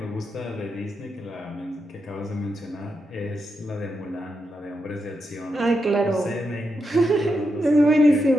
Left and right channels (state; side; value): normal; both; correlation 0.85